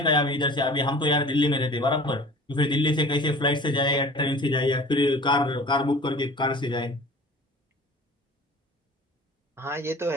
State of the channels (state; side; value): normal; both; correlation 0.43